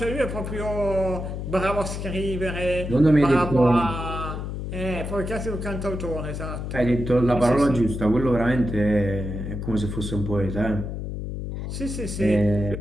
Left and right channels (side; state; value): left; noise; hum, 5 dB below the sound